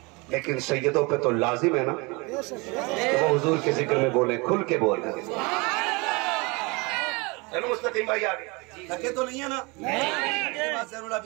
लेकिन सैयदों पे तो लाजिम है ना कि वो हुजूर के जिक्र में बोले, खुल के बोले। चलो मुस्तकीम भाई आगे थके तो नहीं है ना? ज़रूर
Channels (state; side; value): quieter; left; 27.2 dB